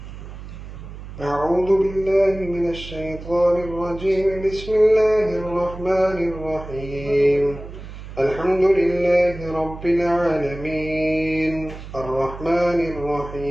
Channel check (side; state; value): right; noise; hum, 13 dB below the sound